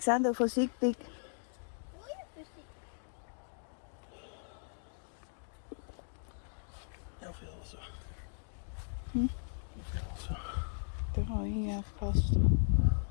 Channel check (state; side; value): silent; right; digital silence